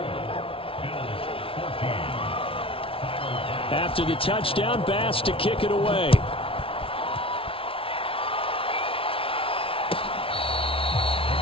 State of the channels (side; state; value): right; late; 0.26 ms